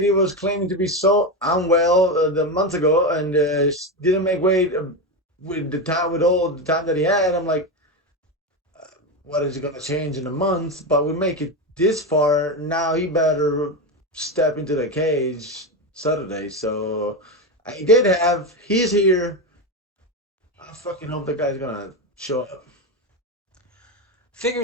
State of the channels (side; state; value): both; normal; correlation 0.15